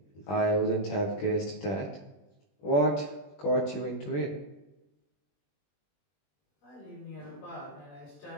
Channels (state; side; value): late; right; 21 ms